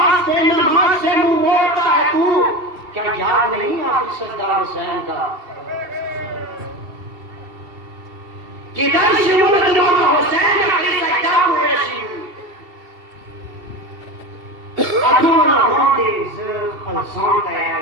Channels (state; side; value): late; left; 2.7 ms